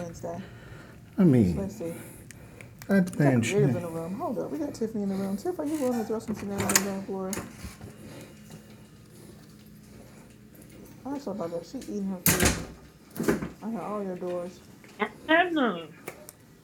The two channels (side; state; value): both; identical; correlation 1.00